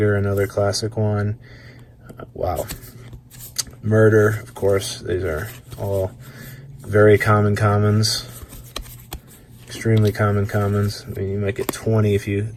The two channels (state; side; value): identical; both; correlation 1.00